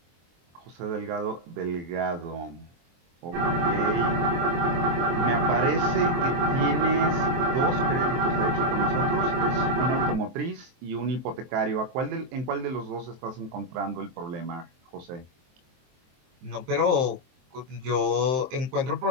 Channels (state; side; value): late; left; 23 ms